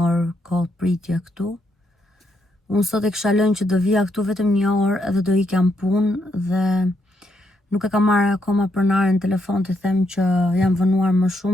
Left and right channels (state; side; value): normal; both; correlation 0.77